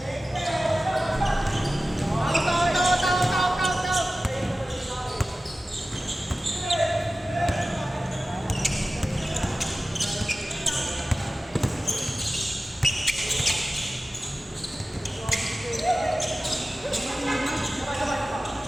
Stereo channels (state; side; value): normal; both; correlation 0.95